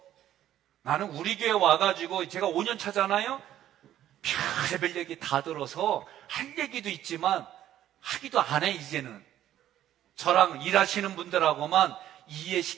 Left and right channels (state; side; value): quieter; left; 12.1 dB